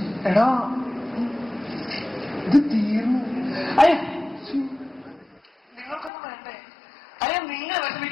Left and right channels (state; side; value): drops out; right; at 6.1 s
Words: എടാ ഇത് തീർന്നു. അയ്യ നിങ്ങൾക്കൊന്നും വേണ്ടേ? അയ്യ നിങ്ങൾ